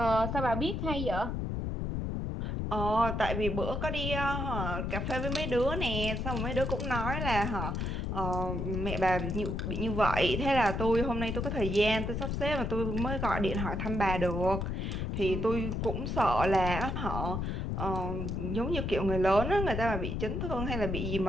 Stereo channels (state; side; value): noise; left; rumble, 2 dB below the sound